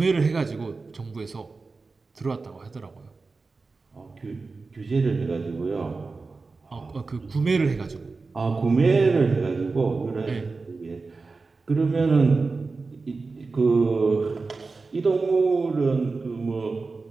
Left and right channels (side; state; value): left; quieter; 4.0 dB